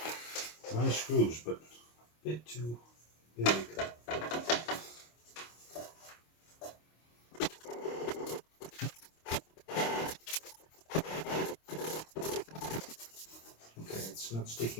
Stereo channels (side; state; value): right; late; 25 ms